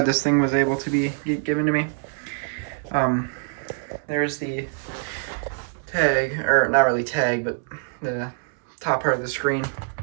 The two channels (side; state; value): left; silent; 62 dB below the other